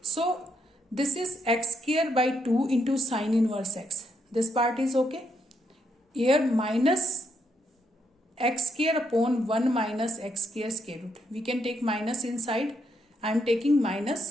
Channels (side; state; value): both; normal; correlation 0.77